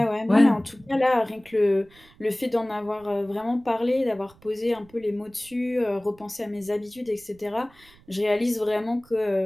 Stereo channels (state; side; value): noise; right; rumble, 27 dB below the sound